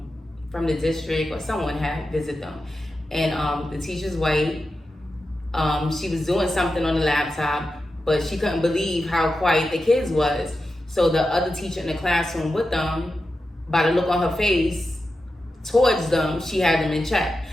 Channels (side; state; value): both; normal; correlation 0.91